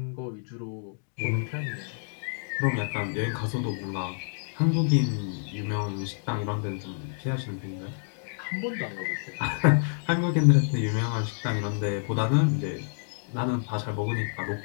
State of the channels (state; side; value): silent; right; digital silence